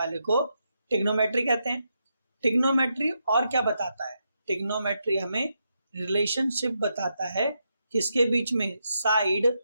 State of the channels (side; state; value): both; inverted; correlation -0.83